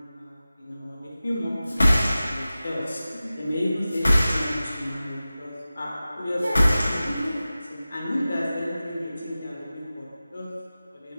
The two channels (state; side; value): inverted; both; correlation -0.96